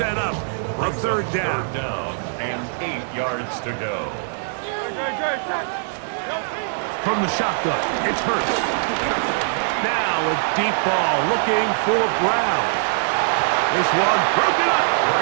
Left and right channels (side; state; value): left; silent; digital silence